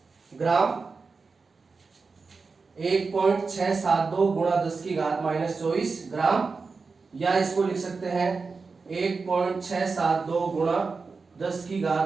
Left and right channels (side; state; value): left; quieter; 4.5 dB